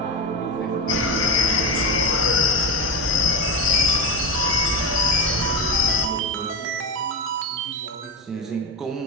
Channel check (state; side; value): normal; both; correlation 0.19